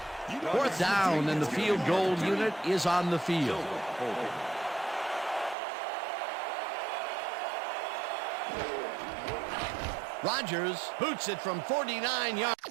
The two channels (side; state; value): left; drops out; at 5.6 s